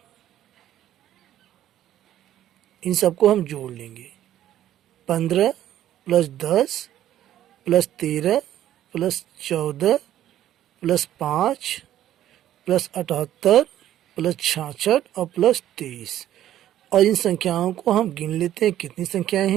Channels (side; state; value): left; quieter; 12.2 dB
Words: इन सबको हम जोड़ लेंगे। 15, plus 10 plus 13 plus 14 plus 5 plus 78 plus 66 और प्लस 23। और इन संख्याओं को हम गिन लेते हैं। कितनी संख्याएं